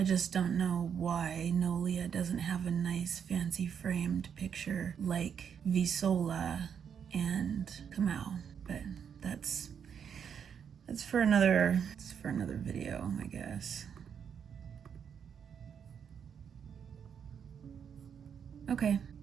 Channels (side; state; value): left; quieter; 7.6 dB